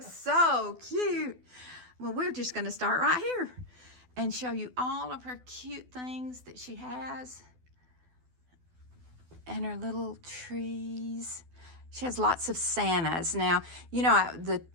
so cute. Well, we're just going to start right here and show you all of her cute things that she has. And her little trees. She has lots of Santas. Now, you know, the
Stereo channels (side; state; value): left; late; 12 ms